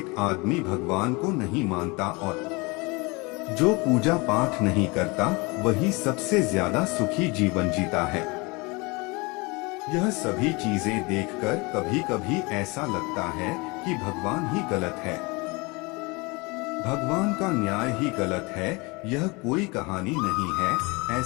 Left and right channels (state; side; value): quieter; right; 26.7 dB